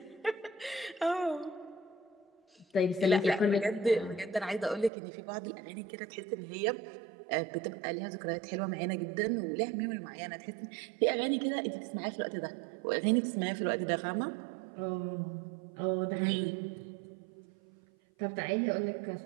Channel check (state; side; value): drops out; left; at 4.9 s